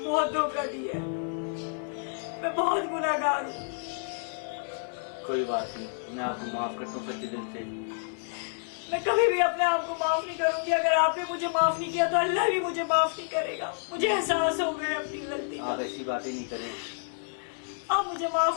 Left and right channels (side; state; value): right; silent; digital silence